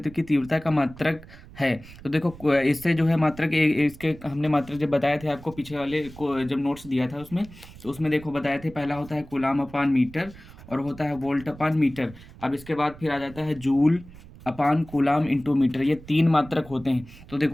की तीव्रता का मात्रक है। तो देखो इससे जो है मात्रक इसके हमने मात्रक जब बताए थे आपको पीछे वाले को जब नोट्स दिया था उसमें, तो उसमें देखो बताए थे, पहला होता है कूलाम अपान मीटर और होता है वोल्ट अपान मीटर। अब इसके बाद फिर आ जाता है जूल अपान कूलाम इंटू मीटर। ये तीन मात्रक होते हैं। तो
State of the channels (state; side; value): noise; right; rumble, 19 dB below the sound